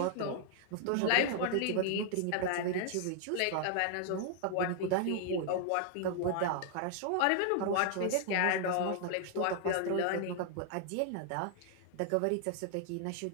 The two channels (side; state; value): both; different; correlation 0.00